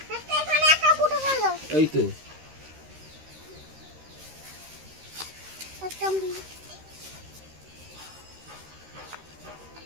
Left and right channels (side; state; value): left; late; 13 ms